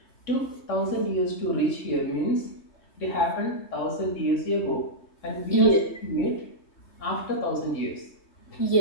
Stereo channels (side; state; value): right; late; 3.2 ms